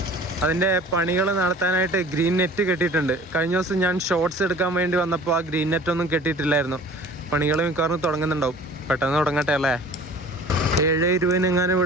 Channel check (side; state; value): both; normal; correlation 0.45